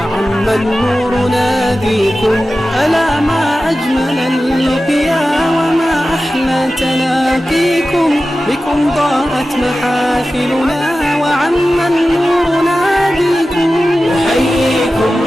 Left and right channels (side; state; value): both; normal; correlation 0.94